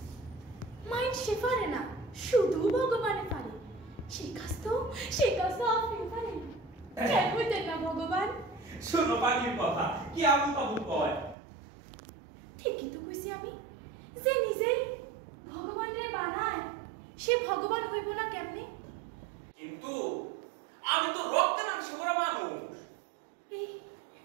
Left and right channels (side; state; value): left; drops out; at 11.4 s